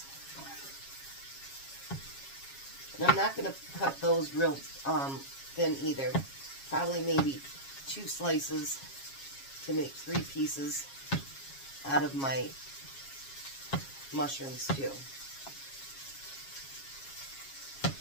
And I'm not going to cut those real thin either. Probably maybe 2 slices to make 3 pieces out of my mushrooms too.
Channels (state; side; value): late; right; 7.3 ms